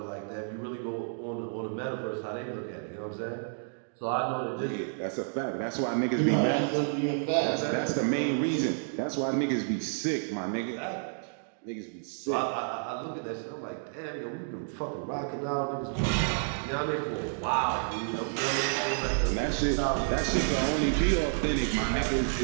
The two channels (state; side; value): silent; left; digital silence